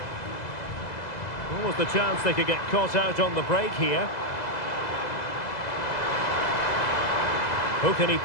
What was the chance they could get caught out on the break here? Who can he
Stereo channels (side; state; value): right; late; 2.0 ms